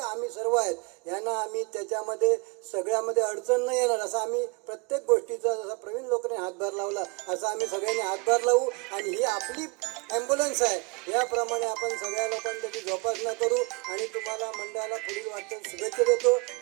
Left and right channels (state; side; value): quieter; left; 29.8 dB